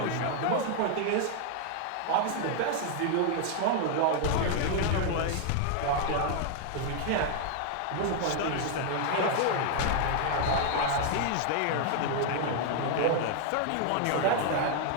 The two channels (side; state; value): both; different; correlation 0.00